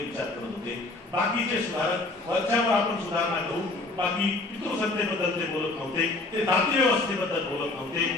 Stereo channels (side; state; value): right; quieter; 3.1 dB